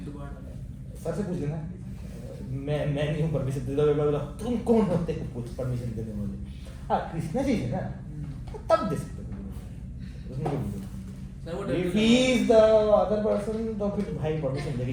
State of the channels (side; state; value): both; identical; correlation 1.00